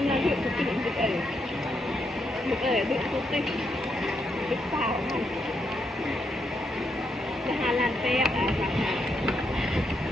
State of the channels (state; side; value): normal; both; correlation 0.79